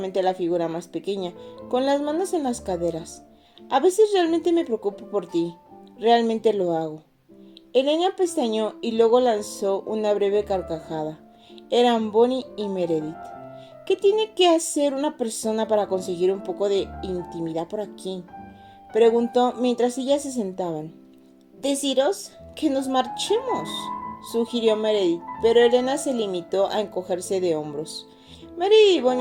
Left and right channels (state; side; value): identical; both; correlation 1.00